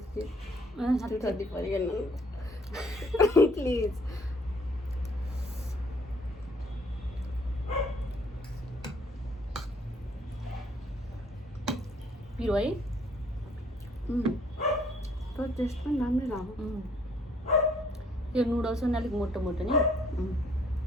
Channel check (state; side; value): normal; both; correlation 0.62